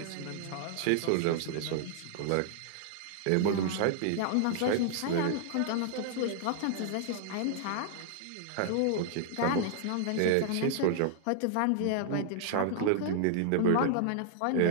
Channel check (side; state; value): both; different; correlation -0.01